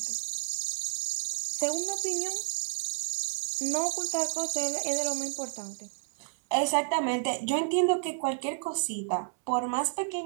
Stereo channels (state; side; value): silent; left; 57 dB below the other